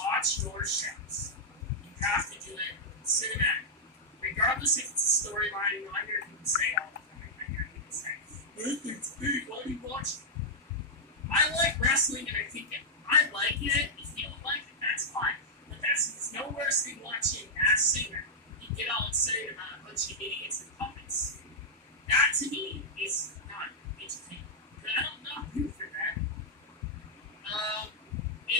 your shows, you have to do it cinematic. Regardless if it's a storyline, you know, I hear people say all the time. I hear people say, it's big, why do you watch it? I like wrestling and I think if I like it, if you don't like it, that's fine. But it's no worse than watching Masked Singer. You get all excited about a bunch of idiots against opponents. That to me is not entertaining. But I don't know who for that.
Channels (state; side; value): normal; both; correlation -0.08